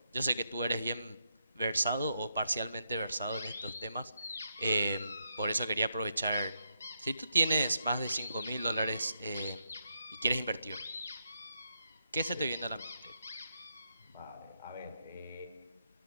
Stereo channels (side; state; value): both; inverted; correlation -0.81